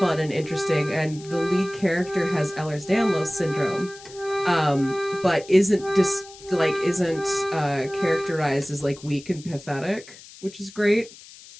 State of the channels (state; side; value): noise; left; hiss, 19 dB below the sound